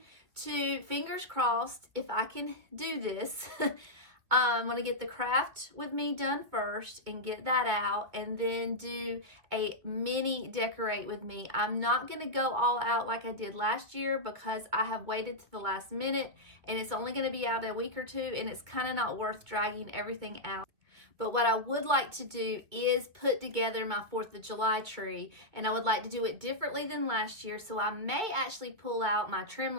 to, fingers crossed, if I can do this, I'm going to get the craft with me done first and get that out, and then do a mini decorate with me. I'm not going to go all out like I did last year because I have waited to the last minute and it's only going to be out a week or two, and it's kind of not worth dragging everything out. But what I would like to do is put together my 4th of July tree, and I would like to do it differently than last year. So I may actually pull out my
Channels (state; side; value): late; left; 2.5 ms